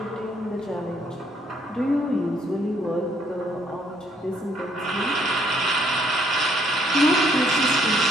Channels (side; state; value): both; normal; correlation 0.68